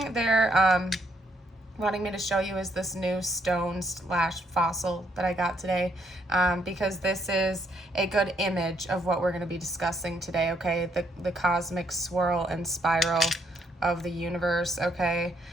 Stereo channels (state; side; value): normal; both; correlation 0.72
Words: they're wanting me to show you is this new stone/fossil that I got today, because this is a good image of what we're going to be discussing today, okay? The cosmic swirl and spiral of the universe, okay?